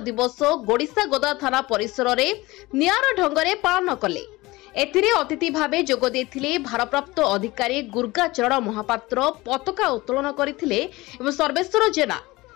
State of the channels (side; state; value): right; quieter; 20.6 dB